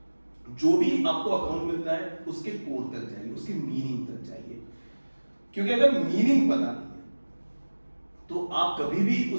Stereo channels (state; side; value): inverted; both; correlation -1.00